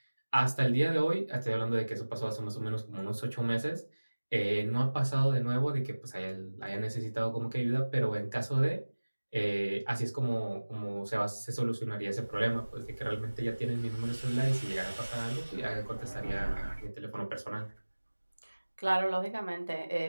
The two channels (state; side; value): inverted; both; correlation -1.00